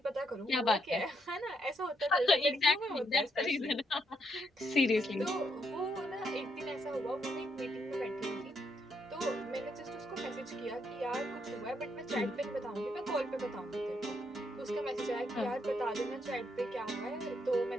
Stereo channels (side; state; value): both; normal; correlation 0.77